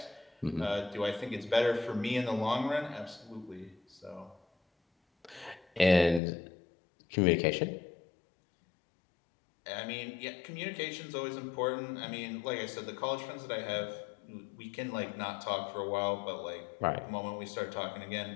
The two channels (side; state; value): right; drops out; at 6.2 s